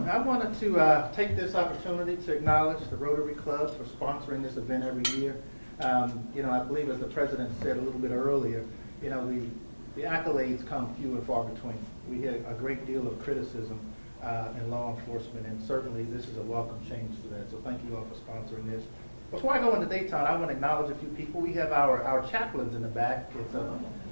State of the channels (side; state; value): both; inverted; correlation -1.00